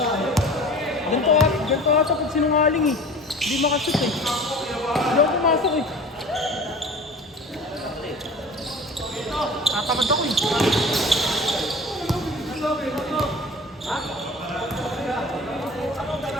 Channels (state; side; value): normal; both; correlation 0.40